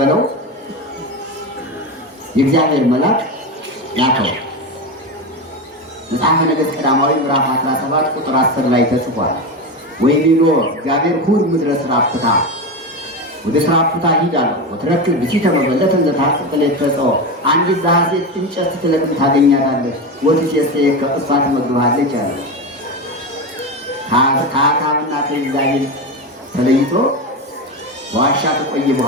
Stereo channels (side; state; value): both; normal; correlation 0.19